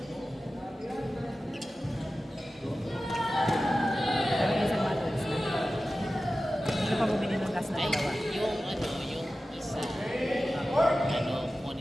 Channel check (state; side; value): normal; both; correlation 0.95